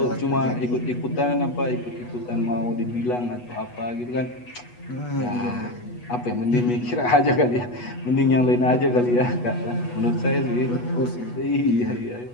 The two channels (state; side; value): late; right; 8.2 ms